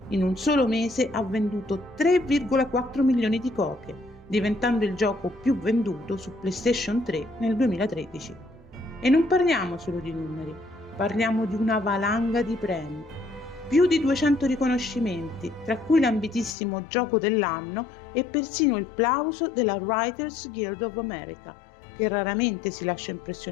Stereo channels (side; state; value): right; drops out; at 16.6 s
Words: In un solo mese ha venduto 3,4 milioni di copie, diventando il gioco più venduto su PlayStation 3 nel 2013. E non parliamo solo di numeri, parliamo di una valanga di premi. Più di 200 riconoscimenti, tra cui l'ambitissimo Gioco dell'anno e persino il plauso della Writers Guild of America, che raramente si lascia